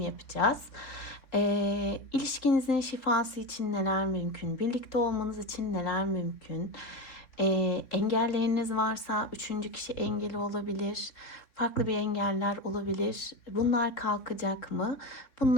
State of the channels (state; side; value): late; right; 3.6 ms